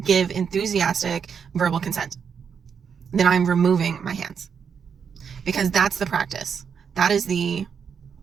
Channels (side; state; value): left; quieter; 6.8 dB